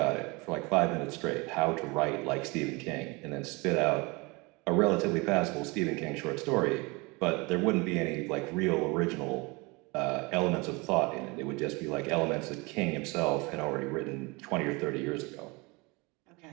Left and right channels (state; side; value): quieter; left; 26.5 dB